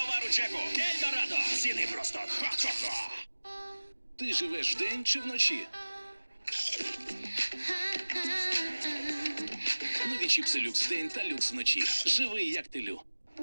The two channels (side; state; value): both; inverted; correlation -1.00